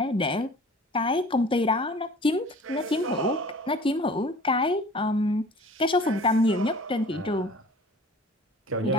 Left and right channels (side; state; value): both; normal; correlation 0.45